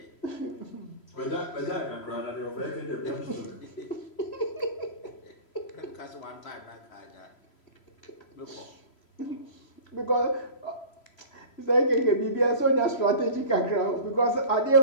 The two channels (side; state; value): right; late; 3.0 ms